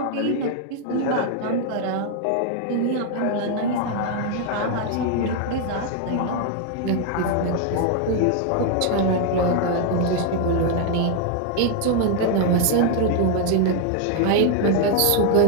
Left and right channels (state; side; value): different; both; correlation 0.00